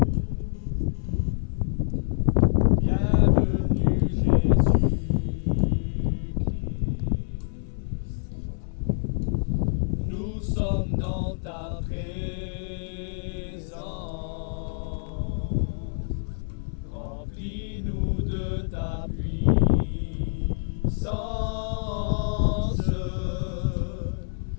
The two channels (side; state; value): right; silent; digital silence